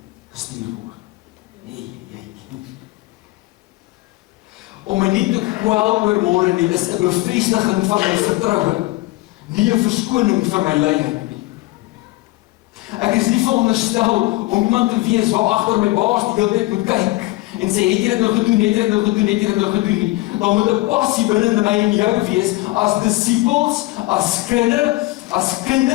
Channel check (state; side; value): quieter; right; 20.3 dB